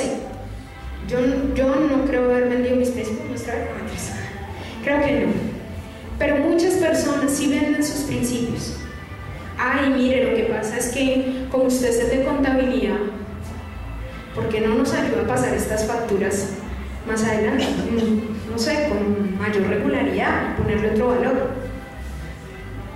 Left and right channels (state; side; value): identical; both; correlation 1.00